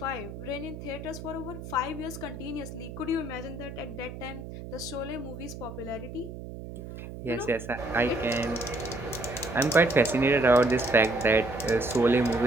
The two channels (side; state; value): right; noise; hum, 11 dB below the sound